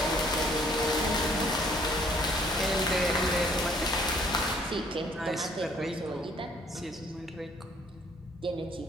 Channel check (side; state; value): both; normal; correlation 0.61